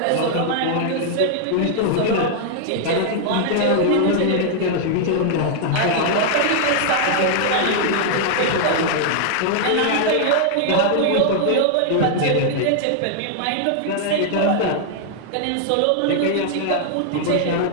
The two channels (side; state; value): both; different; correlation -0.01